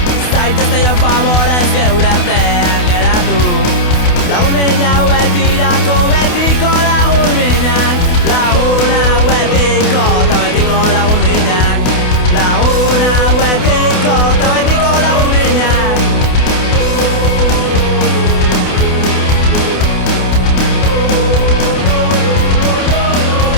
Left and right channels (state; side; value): late; right; 28 ms